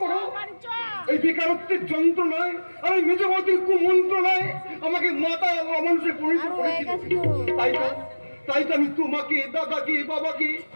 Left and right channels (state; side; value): inverted; both; correlation -1.00